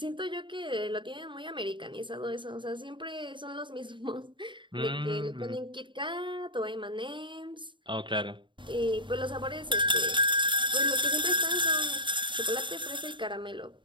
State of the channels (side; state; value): left; late; 0.23 ms